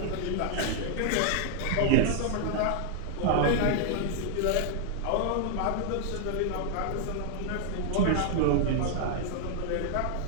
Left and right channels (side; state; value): both; different; correlation -0.01